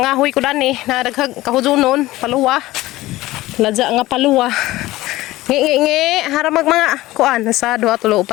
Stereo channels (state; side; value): quieter; right; 17.6 dB